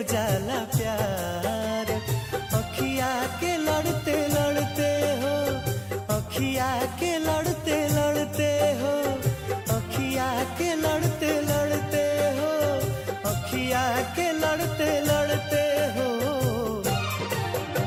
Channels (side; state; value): both; identical; correlation 1.00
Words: जाला प्यार, अखिया के लड़ते लड़ते हो, अखिया के लड़ते लड़ते हो, अखिया के लड़ते लड़ते हो, अखिया के लड़ते लड़ते हो।